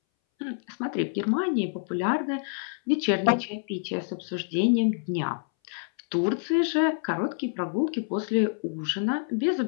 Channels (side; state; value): right; silent; 60 dB below the other